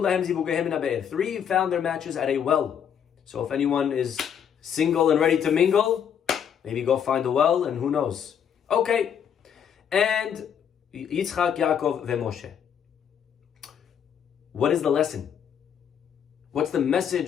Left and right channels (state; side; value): quieter; right; 8.4 dB